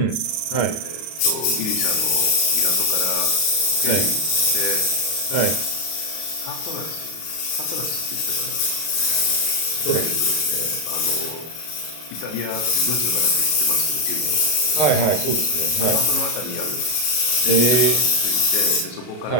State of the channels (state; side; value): late; right; 33 ms